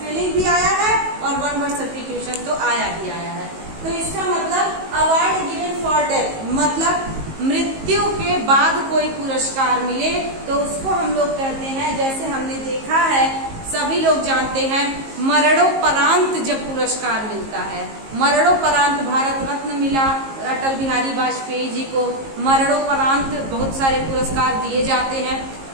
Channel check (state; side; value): late; left; 19 ms